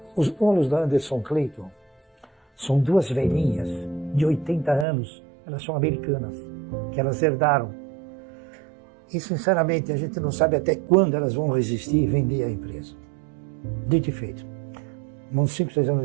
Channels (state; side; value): drops out; left; at 4.9 s